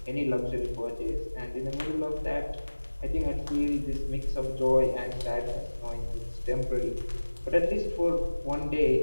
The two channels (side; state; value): both; inverted; correlation -1.00